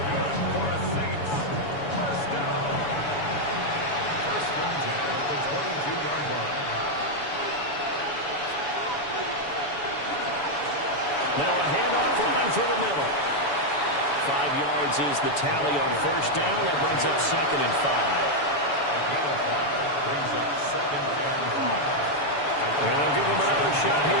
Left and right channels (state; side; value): late; right; 7.0 ms